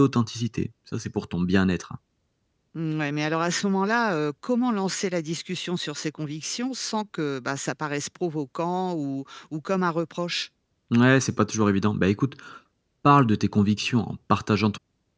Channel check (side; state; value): both; identical; correlation 1.00